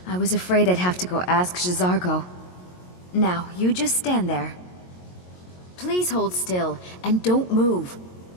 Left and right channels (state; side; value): late; right; 22 ms